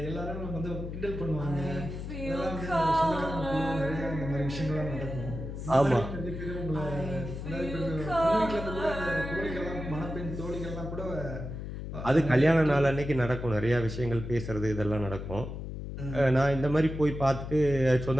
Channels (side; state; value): left; noise; hum, 7 dB below the sound